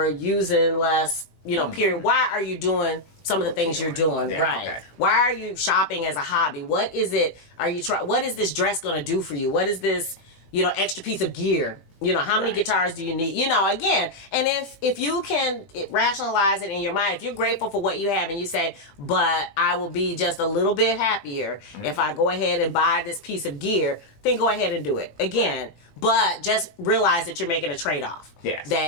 using less, you know, period. Why are you doing some of the things you're doing? Yeah, right. okay. Why are you shopping as a hobby? What is it? What is this dress going to do for you? What is this, you know, extra piece of gear? You know, how many guitars do you need? You know, again, and if you can rationalize it in your mind, if you're grateful for what you have and you say, but I will be just a little bit happier if I go ahead and buy this piece of gear, then go ahead and do it. Again, but just realize that you're making a trade-off. Yes.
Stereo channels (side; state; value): right; late; 18 ms